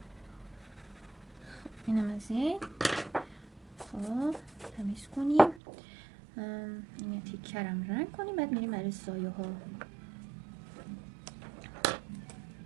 خب اینم از این. خب تمیز کنیم، این تیکرم رنگ کنیم، بعد میریم برای سایه ها.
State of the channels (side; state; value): left; drops out; at 5.6 s